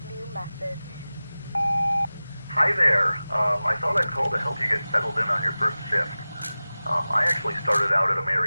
new message. Hi there. I thought I'd call to help you get settled in on your first shift. I actually started out at a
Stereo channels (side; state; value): both; inverted; correlation -0.97